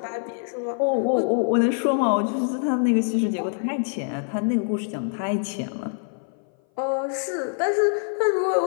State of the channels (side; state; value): right; silent; 58 dB below the other